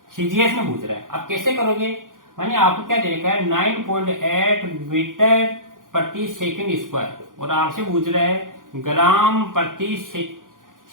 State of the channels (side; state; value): left; late; 0.89 ms